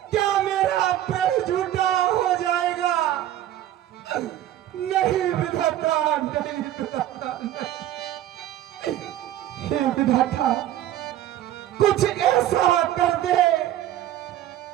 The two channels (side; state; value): left; quieter; 12.8 dB